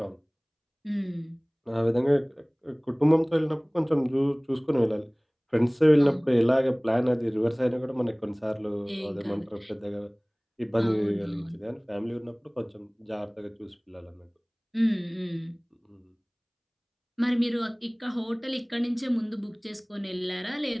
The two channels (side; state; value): both; identical; correlation 1.00